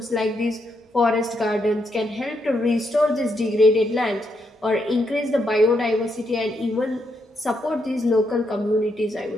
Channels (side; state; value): both; normal; correlation 0.79